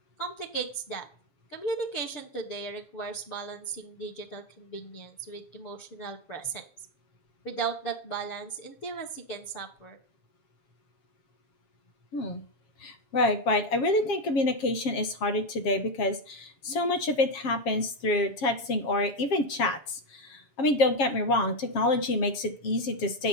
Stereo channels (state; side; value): late; right; 7.4 ms